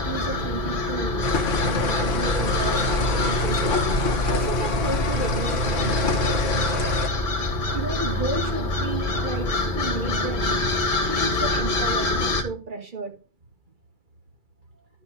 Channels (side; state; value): left; late; 2.3 ms